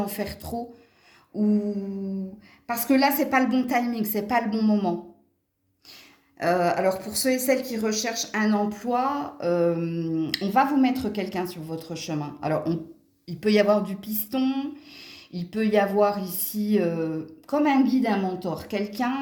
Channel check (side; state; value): both; identical; correlation 1.00